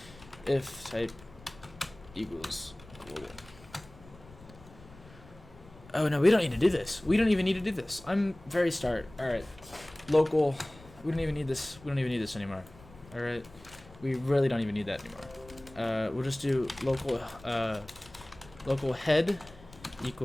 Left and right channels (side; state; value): left; noise; rumble, 21 dB below the sound